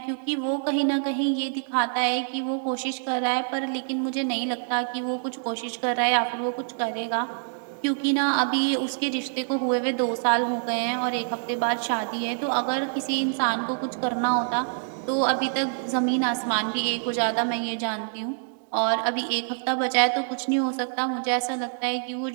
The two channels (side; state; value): left; silent; digital silence